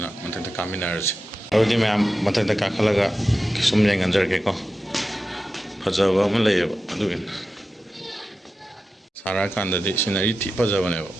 mathak ta kaminar je audi mayam mathak ta khalaga sum jeng anjar ke ko fajawa ma lay adu सारा कांदा दे सिनारी थी पजा बने वो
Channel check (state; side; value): normal; both; correlation 0.92